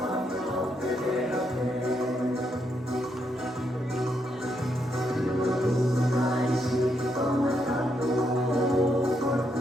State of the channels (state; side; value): normal; both; correlation 0.78